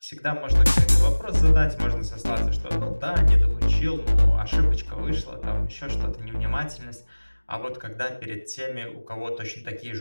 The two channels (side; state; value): both; inverted; correlation -1.00